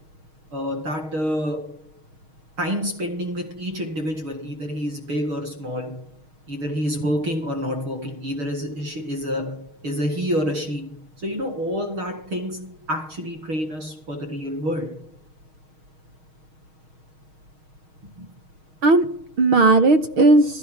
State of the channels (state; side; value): late; left; 6.4 ms